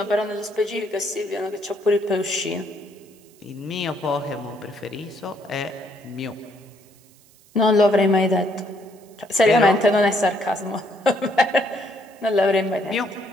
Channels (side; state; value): right; noise; hiss, 28 dB below the sound